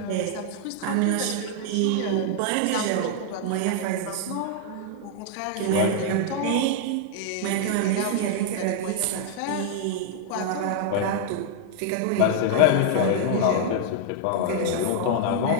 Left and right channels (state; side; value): different; both; correlation -0.01